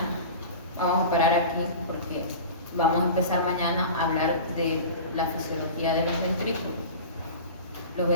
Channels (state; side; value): inverted; both; correlation -0.35